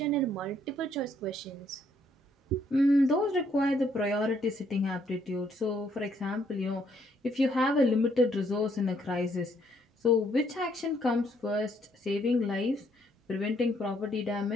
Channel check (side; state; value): both; normal; correlation 0.69